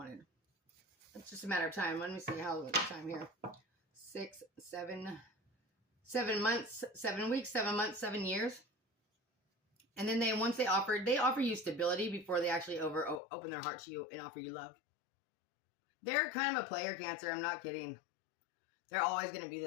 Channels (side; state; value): right; drops out; at 13.2 s